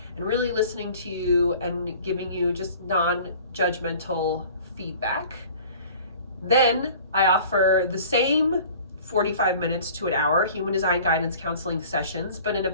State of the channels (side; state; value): both; inverted; correlation -0.46